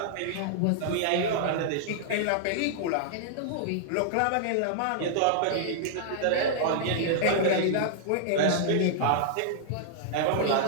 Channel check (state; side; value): different; both; correlation -0.01